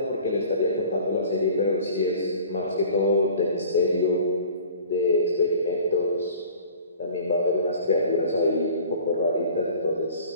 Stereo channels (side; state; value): both; inverted; correlation -0.46